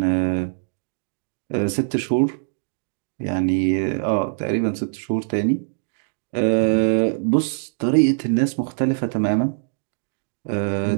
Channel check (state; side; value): silent; left; digital silence